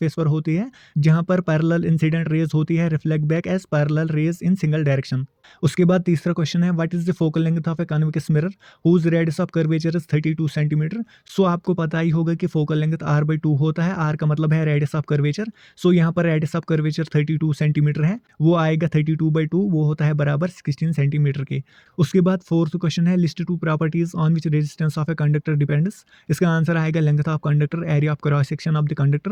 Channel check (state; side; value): identical; both; correlation 1.00